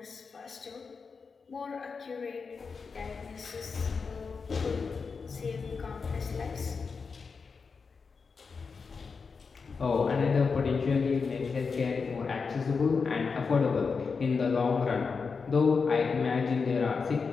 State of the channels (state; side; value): quieter; right; 5.1 dB